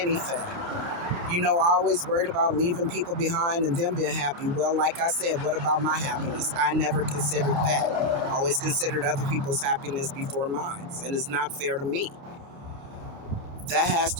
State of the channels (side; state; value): left; late; 28 ms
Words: I always worried about leaving people behind and them being happy. Well, like I said, what about my happiness? I never considered that. I always considered other people's happiness before mine, and it's not fair to me. That has